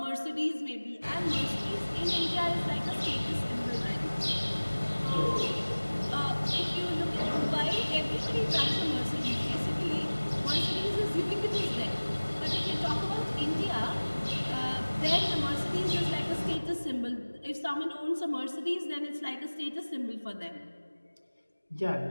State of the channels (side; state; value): both; inverted; correlation -1.00